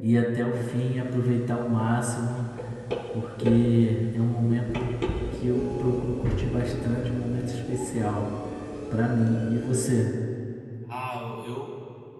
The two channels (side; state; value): both; identical; correlation 1.00